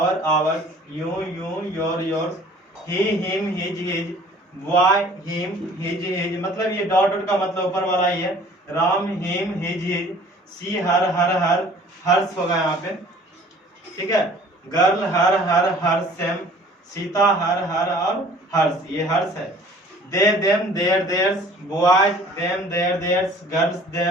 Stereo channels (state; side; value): normal; both; correlation 0.51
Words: ours, you, your, yours, he, him, his, his, why, him, his, his, मतलब ये डॉट डॉट का मतलब ऊपर वाला ही है। Ram, him, his, his, she, her, her, hers होगा यहाँ पे। ठीक है, girl, her, same, Sita, her और हर्ष, ये हर्ष है। They, them, their, theirs, boys, them, their, theirs, girls,